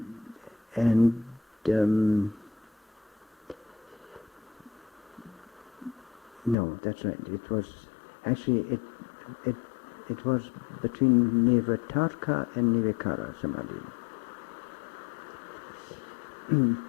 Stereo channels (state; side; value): drops out; right; at 6.6 s